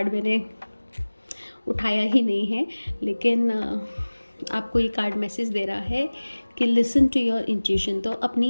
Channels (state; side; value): inverted; both; correlation -1.00